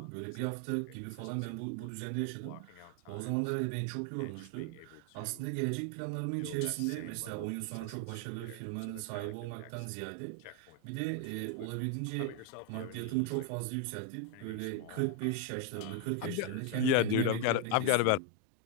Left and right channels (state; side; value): different; both; correlation 0.01